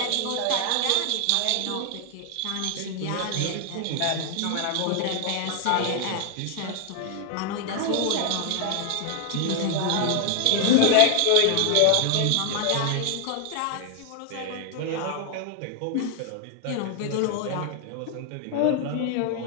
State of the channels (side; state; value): both; different; correlation 0.00